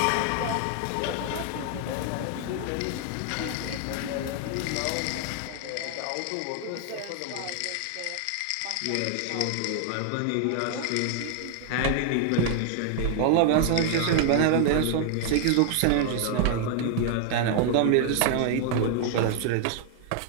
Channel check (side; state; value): both; different; correlation 0.00